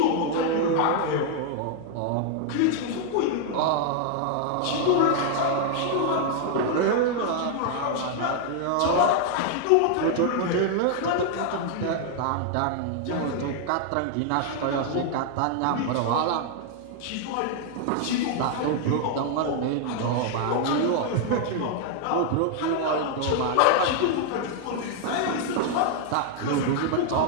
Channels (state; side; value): different; both; correlation 0.00